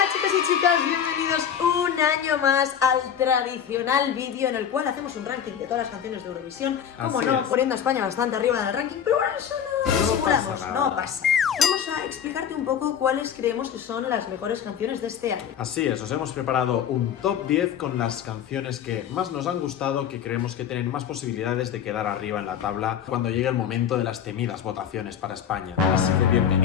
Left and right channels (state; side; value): quieter; right; 8.6 dB